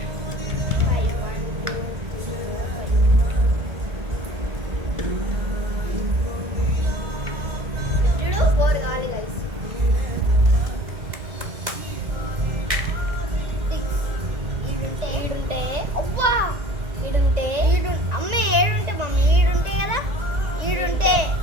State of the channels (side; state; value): left; late; 1.6 ms